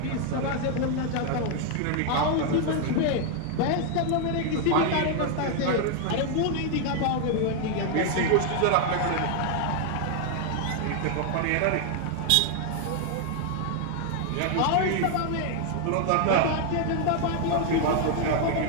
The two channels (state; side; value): different; both; correlation 0.00